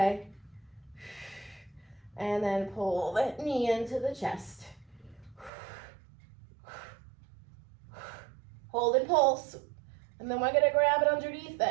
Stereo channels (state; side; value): drops out; left; at 5.5 s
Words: And then pull that knee into the chest. Hold and pulse, and then we're gonna grab it underneath